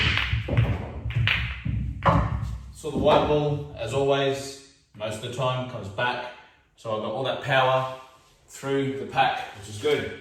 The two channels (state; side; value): identical; both; correlation 1.00